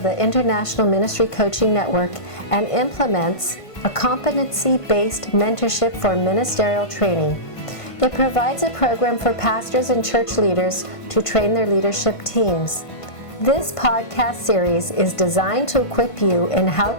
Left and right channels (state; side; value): late; right; 1.5 ms